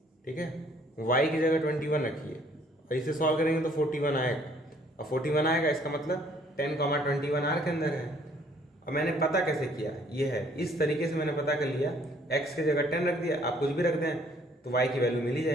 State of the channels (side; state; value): both; normal; correlation 0.61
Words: ठीक है, y की जगह 21 रखिए, और इसे सॉल्व करेंगे तो 41 आएगा, और 41 आएगा इसका मतलब 10,21 R के अंदर है। और मैंने पता कैसे किया, ये है, इस तरीके से मैंने पता कर लिया, x की जगह 10 रख दिया, आप कुछ भी रख दें तो y की वैल्यू मिल ही